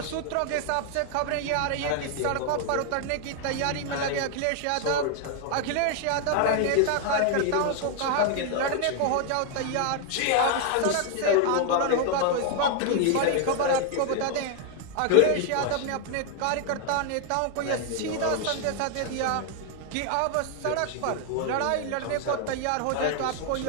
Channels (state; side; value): different; both; correlation 0.00